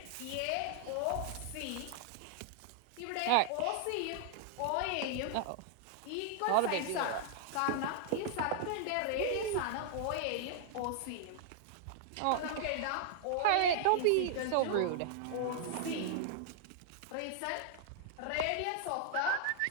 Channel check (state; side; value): different; both; correlation -0.01